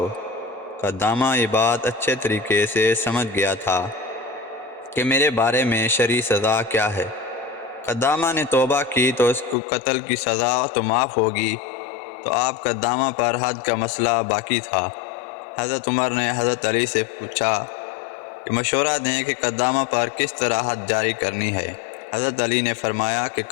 قدامہ یہ بات اچھے طریقے سے سمجھ گیا تھا کہ میرے بارے میں شرعی سزا کیا ہے۔ قدامہ نے توبہ کی تو اس کو قتل کی سزا تو معاف ہوگی، تو آپ قدامہ پر حد کا مسئلہ باقی تھا۔ حضرت عمر نے حضرت علی سے پوچھا کہ مشورہ دیں کہ قدامہ پر کس طرح حد جاری کرنی ہے۔ حضرت علی نے فرمایا کہ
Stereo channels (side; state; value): right; drops out; at 9.6 s